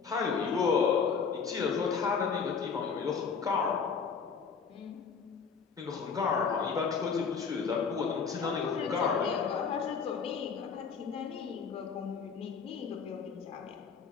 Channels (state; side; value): quieter; right; 5.8 dB